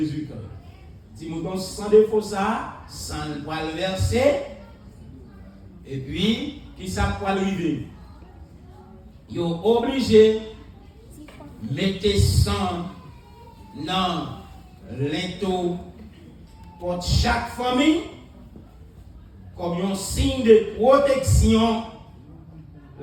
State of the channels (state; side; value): identical; both; correlation 1.00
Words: Petit mouton sans défaut, ça, sans le poil versé. Et puis, qui ça poil rivé? Ils sont obligés de mettre sang dans l'into pour chaque famille comme un signe de protection